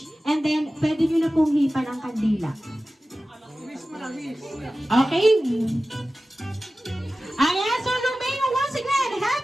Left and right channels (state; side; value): normal; both; correlation 0.95